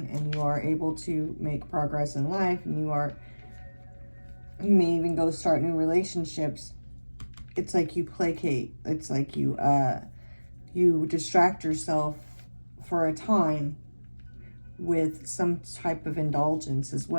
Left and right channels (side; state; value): both; inverted; correlation -1.00